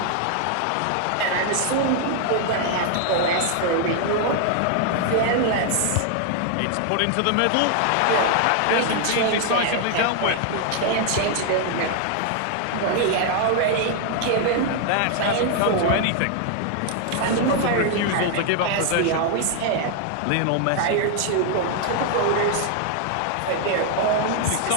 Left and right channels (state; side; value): different; both; correlation 0.00